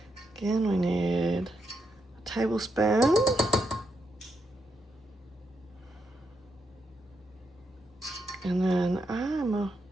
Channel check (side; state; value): both; normal; correlation 0.81